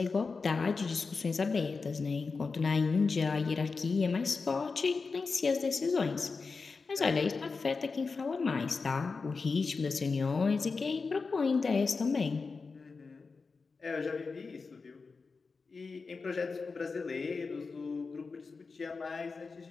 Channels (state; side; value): quieter; right; 4.5 dB